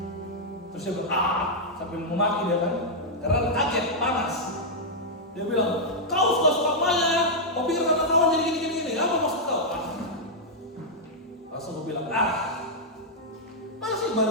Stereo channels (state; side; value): normal; both; correlation -0.06